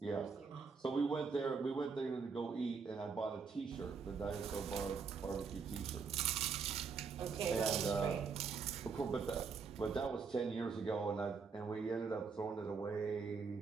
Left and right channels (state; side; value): quieter; left; 5.3 dB